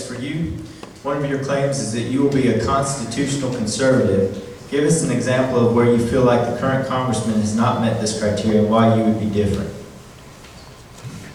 for you. One of your claims is that you will be a constitutional conservative. Give us an example of where you feel like the current congressman has not met this criteria and why you would be different.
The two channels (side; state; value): both; identical; correlation 1.00